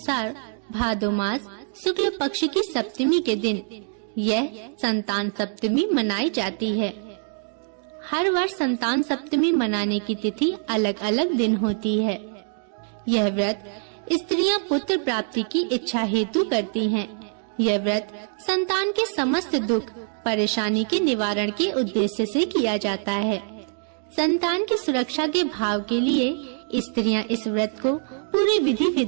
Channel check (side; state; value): left; silent; 58 dB below the other